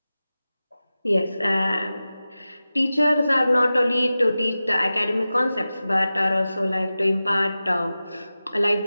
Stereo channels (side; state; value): both; inverted; correlation -0.95